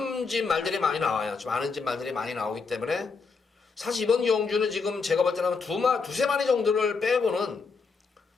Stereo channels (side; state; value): right; quieter; 4.8 dB